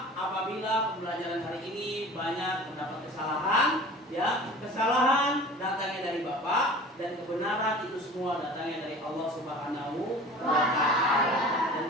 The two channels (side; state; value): both; normal; correlation 0.41